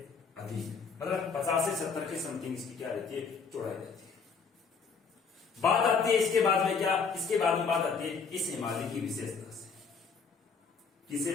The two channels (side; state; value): right; quieter; 5.4 dB